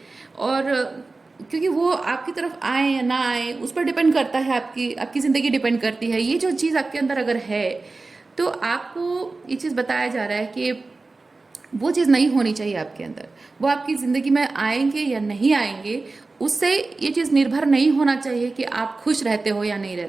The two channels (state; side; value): quieter; left; 3.6 dB